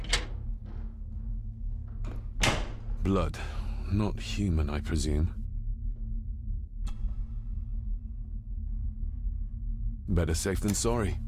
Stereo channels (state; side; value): identical; both; correlation 1.00